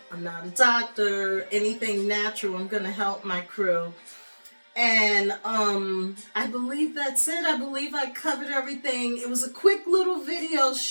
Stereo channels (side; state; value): both; inverted; correlation -1.00